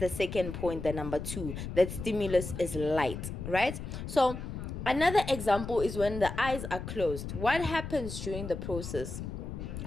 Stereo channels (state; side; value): noise; left; rumble, 7 dB below the sound